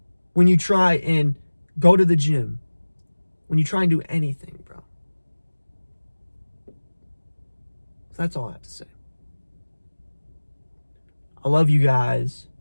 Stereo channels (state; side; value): inverted; both; correlation -1.00